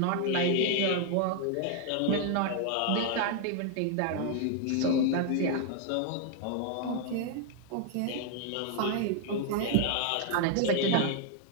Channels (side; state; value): both; different; correlation 0.00